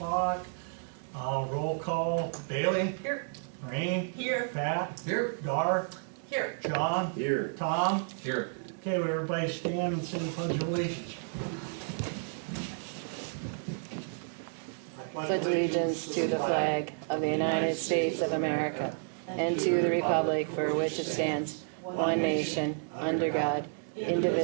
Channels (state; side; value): silent; left; digital silence